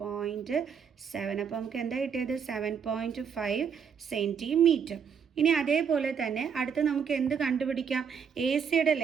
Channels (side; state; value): left; quieter; 6.9 dB